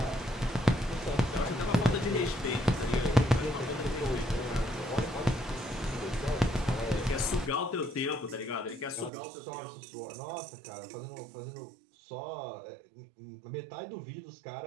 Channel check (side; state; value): left; drops out; at 9.1 s